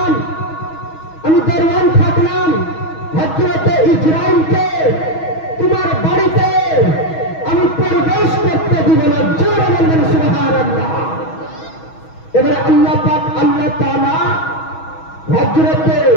আমি দরওয়ান থাকলাম। হযরতে ইসরাঈলকে তোমার বাড়িতে আমি প্রবেশ করতে দিব না। জোরে বলবেন সুবহানাল্লাহ। এবারে আল্লাহ পাক, আল্লাহ তাআলা হযরতে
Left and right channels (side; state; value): right; late; 6.3 ms